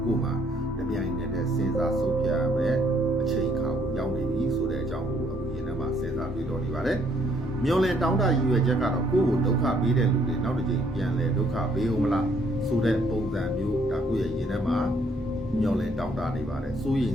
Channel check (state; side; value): normal; both; correlation 0.67